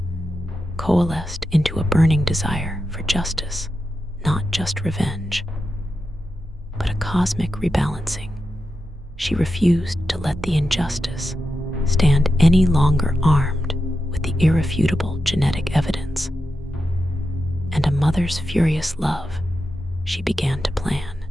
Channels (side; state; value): both; normal; correlation 0.89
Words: coalesced into a burning desire for justice, not just revenge, but a cosmic rebalancing. She refused to let the injustice stand any longer armed with the irrefutable genetic evidence. And a mother's furious love, she began to plan.